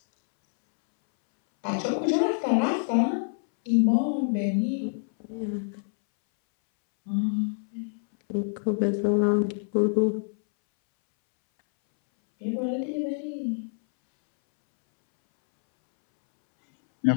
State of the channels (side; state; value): right; silent; 61 dB below the other